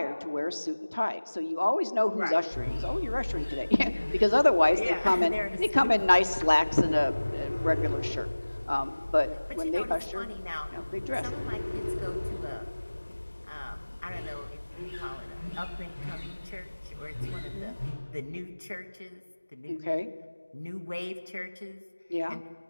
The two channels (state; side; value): inverted; both; correlation -1.00